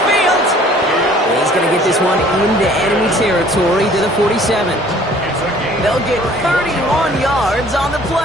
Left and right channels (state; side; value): normal; both; correlation 0.54